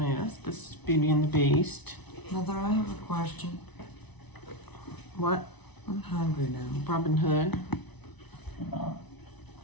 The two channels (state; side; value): late; right; 0.99 ms